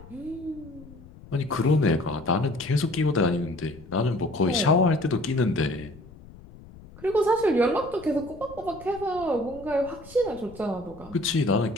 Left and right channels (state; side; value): noise; left; rumble, 19 dB below the sound